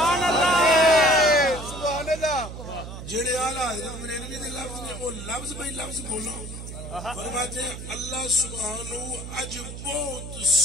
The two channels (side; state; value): right; noise; hum, 10 dB below the sound